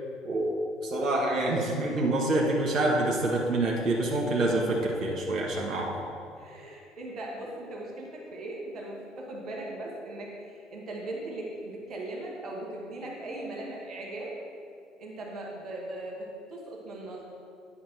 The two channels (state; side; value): normal; both; correlation 0.61